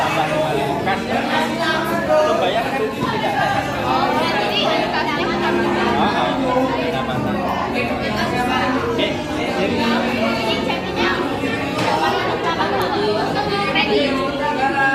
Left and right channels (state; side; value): identical; both; correlation 1.00